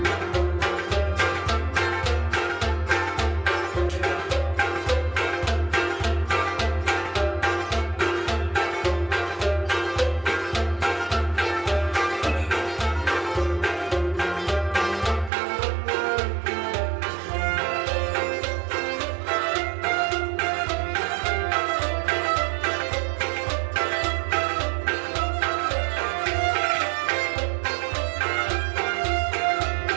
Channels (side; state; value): left; drops out; at 15.3 s